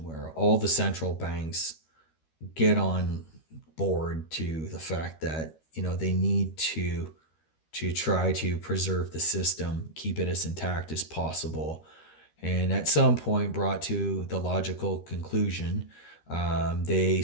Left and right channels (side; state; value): right; late; 13 ms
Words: where all the central banks get on board to the fact that they need to try to preserve the system, keep it as intact as possible, and at some point brought to the logical conclusion, they